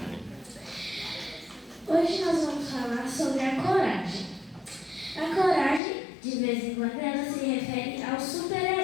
Hoje nós vamos falar sobre a coragem. A coragem, de vez em quando, ela se refere aos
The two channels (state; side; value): drops out; right; at 5.8 s